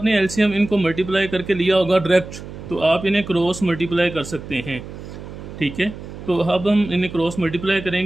एलसीएम इनको मल्टीप्लाई करके लिया होगा डायरेक्ट, तो आप इन्हें क्रॉस मल्टीप्लाई कर सकते हैं, ठीक है। तो अब हम इन्हें क्रॉस मल्टीप्लाई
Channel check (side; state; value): right; noise; hum, 12 dB below the sound